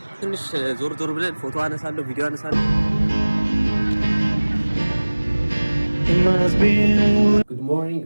ትንሽ ዞር ብለን ፎቶ አነሳለሁ፣ ቪዲዮ አነሳለሁ። ጉድ ሞርኒንግ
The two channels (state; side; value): inverted; both; correlation -1.00